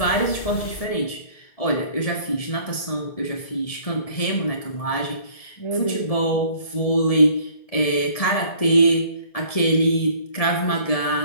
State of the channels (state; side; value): late; right; 1.7 ms